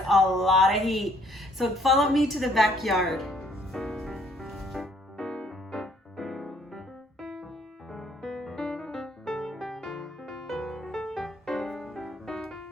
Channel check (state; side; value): normal; both; correlation 0.63